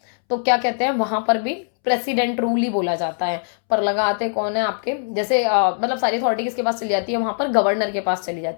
तो क्या कहते हैं, वहां पर भी प्रेसिडेंट रूल ही बोला जाता है, पर लगाते कौन है आपके, जैसे मतलब सारी अथॉरिटी किसके पास चली जाती है, वहां पर गवर्नर के पास चली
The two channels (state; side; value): silent; right; 65 dB below the other